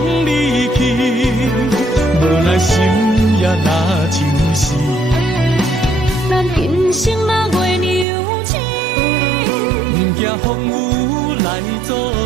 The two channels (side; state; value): left; drops out; at 8.1 s